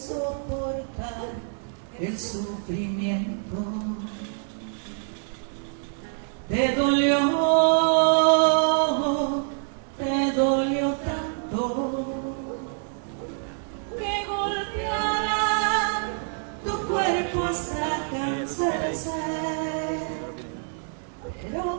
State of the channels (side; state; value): left; silent; 61 dB below the other